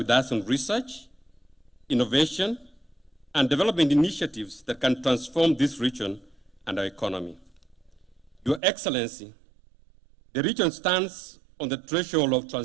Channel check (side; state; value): left; drops out; at 8.6 s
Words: us on research, innovation, and development initiatives that can transform this region and our economy. Your Excellency, the region stands on the threshold of